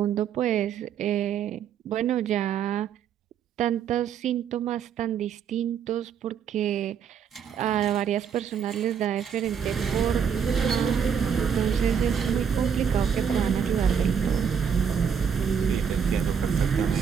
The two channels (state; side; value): quieter; left; 7.5 dB